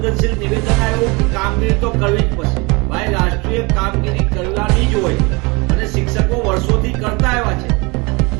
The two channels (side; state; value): left; quieter; 27.1 dB